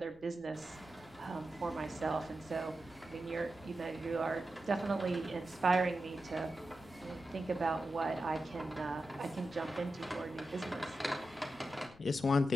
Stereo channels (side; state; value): left; noise; rumble, 24 dB below the sound